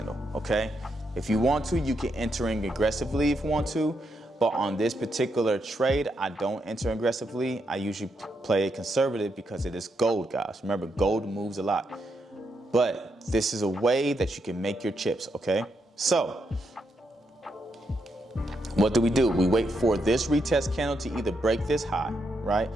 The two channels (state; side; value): normal; both; correlation 0.81